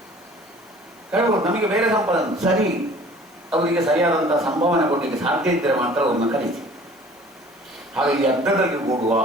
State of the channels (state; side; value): noise; left; hiss, 30 dB below the sound